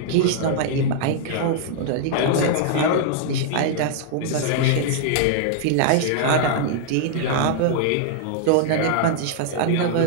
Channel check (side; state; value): both; different; correlation -0.01